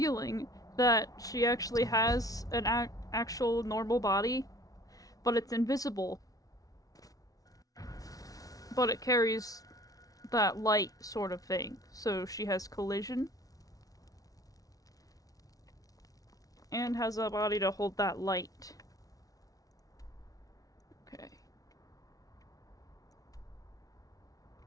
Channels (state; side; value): late; right; 0.18 ms